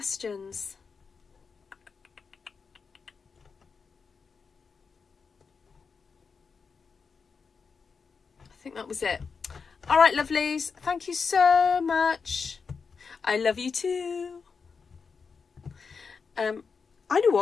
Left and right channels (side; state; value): right; quieter; 5.4 dB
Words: I think that was it. All right, lovelies. Thank you so much. I love you too. I know